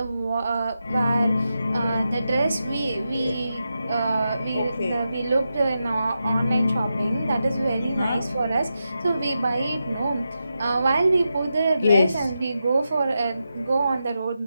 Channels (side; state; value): both; inverted; correlation -0.88